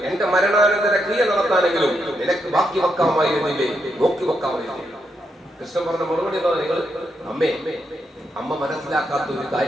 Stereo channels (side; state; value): both; normal; correlation 0.80